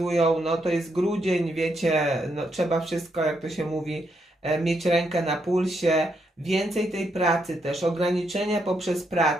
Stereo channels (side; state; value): both; normal; correlation 0.79